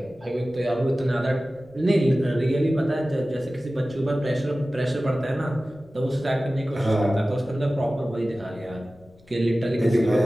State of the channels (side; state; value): left; noise; rumble, 27 dB below the sound